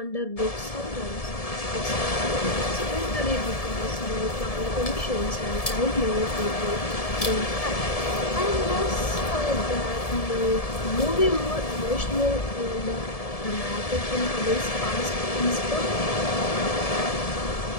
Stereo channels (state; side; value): late; right; 1.7 ms